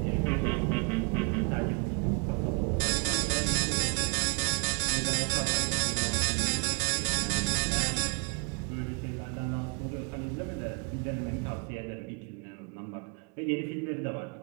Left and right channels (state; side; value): quieter; left; 34.8 dB